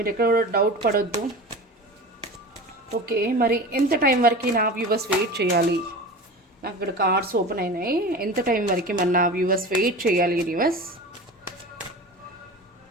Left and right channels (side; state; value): both; normal; correlation 0.33